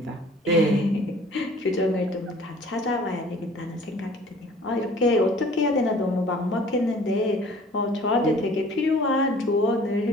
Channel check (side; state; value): both; normal; correlation 0.50